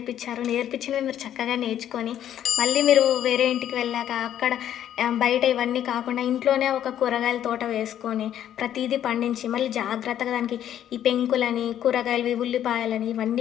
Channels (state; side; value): quieter; right; 10.8 dB